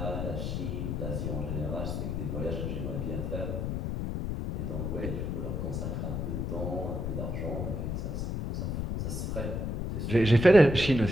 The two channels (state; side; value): noise; left; rumble, 2 dB below the sound